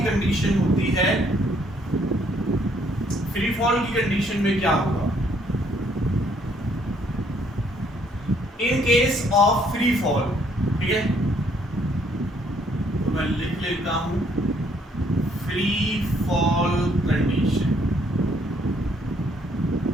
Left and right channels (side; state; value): both; normal; correlation 0.66